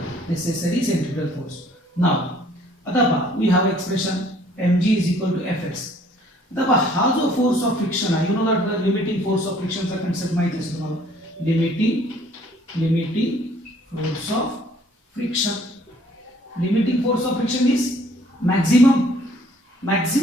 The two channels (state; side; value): normal; both; correlation 0.58